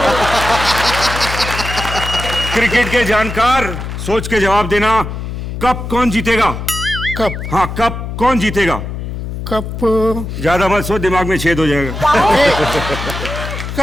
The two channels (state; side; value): noise; left; hum, 6 dB below the sound